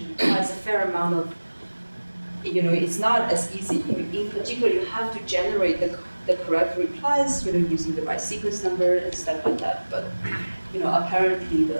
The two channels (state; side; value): inverted; both; correlation -1.00